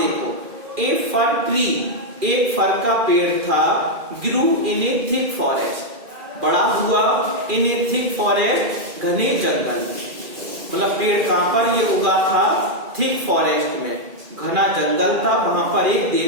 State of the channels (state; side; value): late; left; 2.4 ms